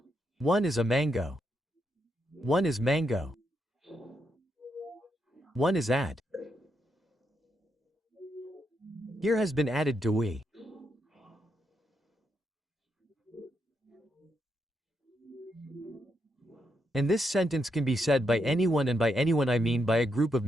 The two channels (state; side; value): normal; both; correlation 0.81